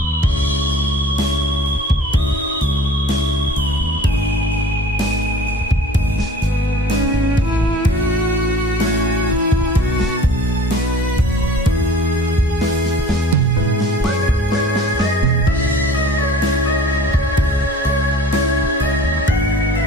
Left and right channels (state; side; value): normal; both; correlation 0.46